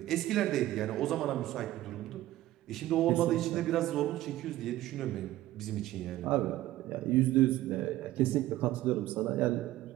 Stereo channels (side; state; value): left; quieter; 15.3 dB